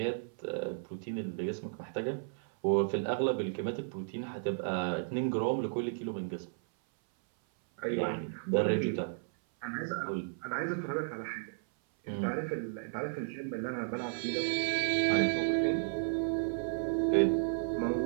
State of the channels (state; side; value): silent; left; 55 dB below the other